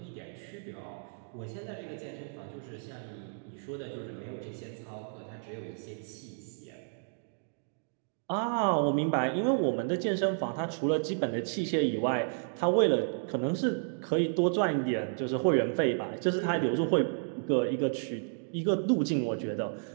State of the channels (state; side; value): silent; left; digital silence